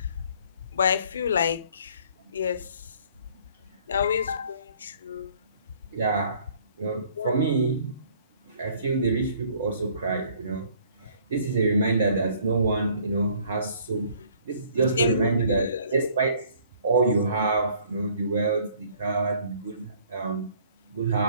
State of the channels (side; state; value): both; inverted; correlation -0.58